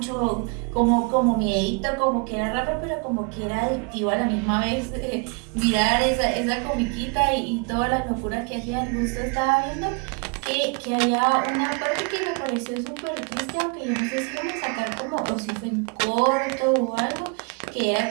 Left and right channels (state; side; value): quieter; left; 33.3 dB